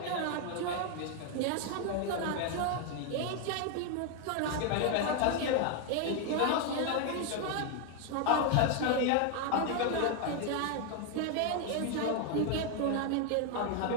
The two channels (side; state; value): both; different; correlation 0.00